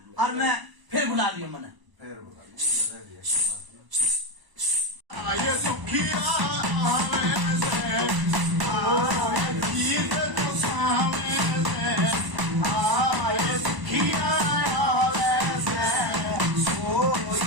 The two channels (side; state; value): left; late; 1.0 ms